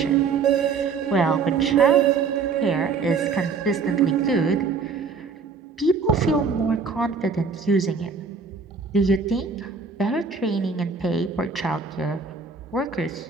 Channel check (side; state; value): left; quieter; 5.1 dB